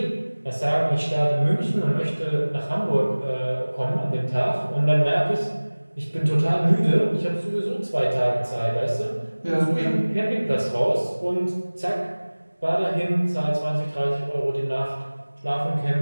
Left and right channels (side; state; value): both; inverted; correlation -1.00